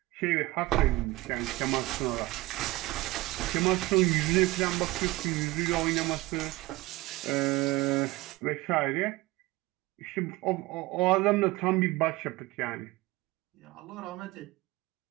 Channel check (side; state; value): left; quieter; 20.1 dB